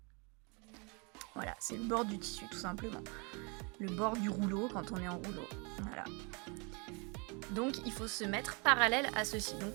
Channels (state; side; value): quieter; left; 32.2 dB